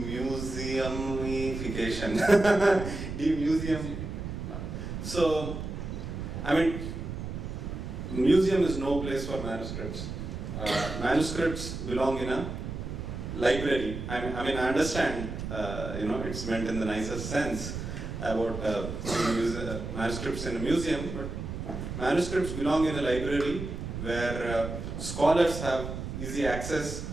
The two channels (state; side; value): noise; right; rumble, 6 dB below the sound